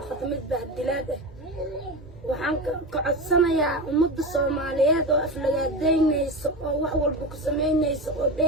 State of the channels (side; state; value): both; normal; correlation 0.22